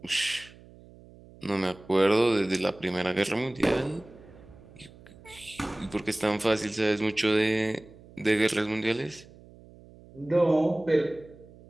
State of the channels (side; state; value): right; noise; hum, 22 dB below the sound